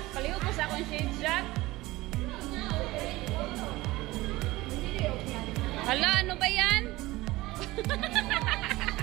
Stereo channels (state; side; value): quieter; left; 19.3 dB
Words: palihog ko sa akong shade, Jack. Hala, ano ba yan?